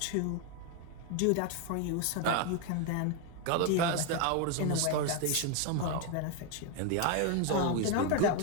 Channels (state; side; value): different; both; correlation 0.01